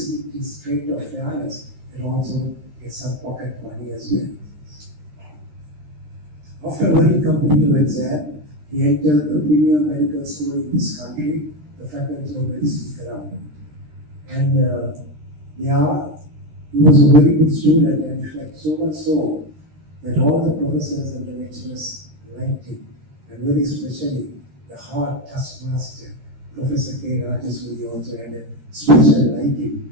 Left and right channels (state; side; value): late; left; 13 ms